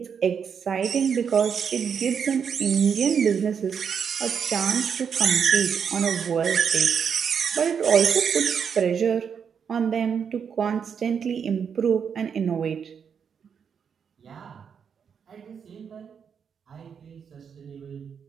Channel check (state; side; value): quieter; left; 7.0 dB